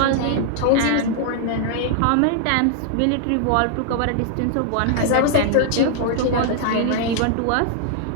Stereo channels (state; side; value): different; both; correlation -0.01